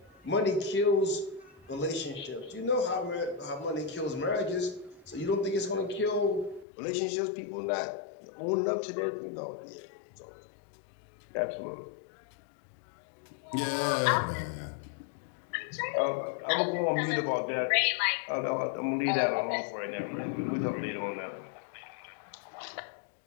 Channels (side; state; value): right; drops out; at 6.7 s